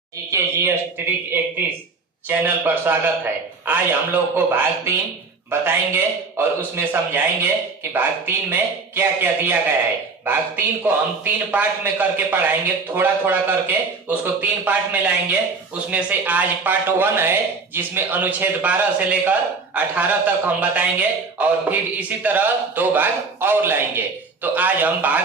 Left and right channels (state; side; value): quieter; left; 4.3 dB